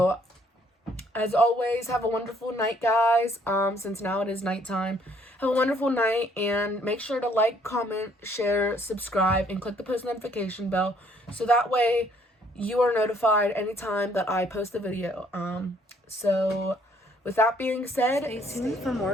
as always, have a wonderful night, guys. Since now it is nighttime. Have a wonderful night, and make sure to like, comment, share, subscribe, and click the post notification bell, so that way you are notified anytime that I post a video. So with that being said, stay tuned for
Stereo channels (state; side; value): normal; both; correlation 0.64